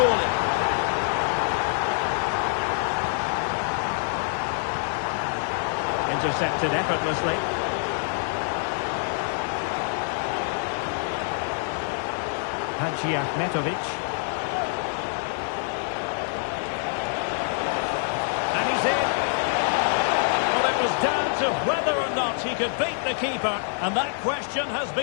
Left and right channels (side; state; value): right; silent; digital silence